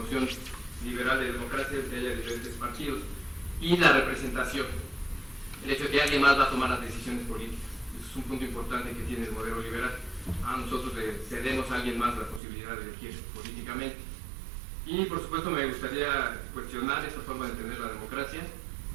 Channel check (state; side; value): drops out; left; at 12.4 s